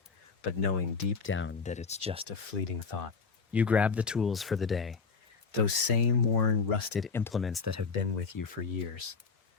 But knowing deep down that it's just a fleeting thought. You grab the tools for the day, those same worn, rusted implements that have been with you for years.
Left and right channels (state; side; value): quieter; right; 5.1 dB